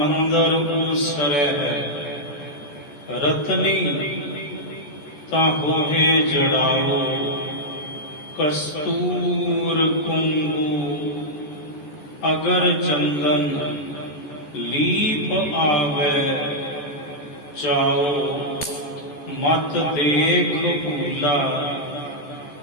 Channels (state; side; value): late; right; 14 ms